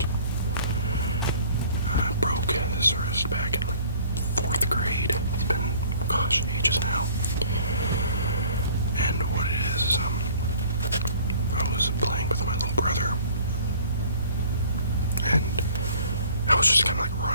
I broke this wrist back in like 4th grade. It's been, gosh, ages now. And what it is I was playing with my little brother, and I was just kind of like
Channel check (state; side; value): inverted; both; correlation -0.52